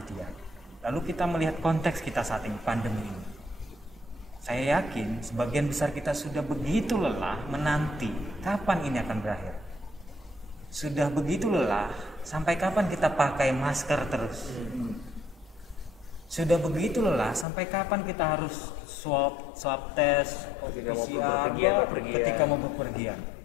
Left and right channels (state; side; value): drops out; right; at 17.4 s